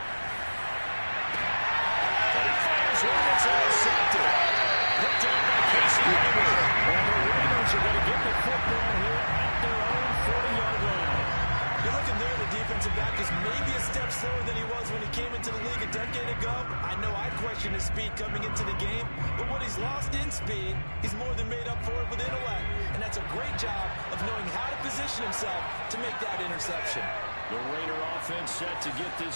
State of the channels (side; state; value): both; inverted; correlation -1.00